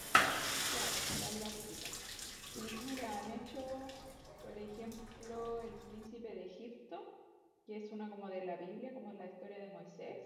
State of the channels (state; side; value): identical; both; correlation 1.00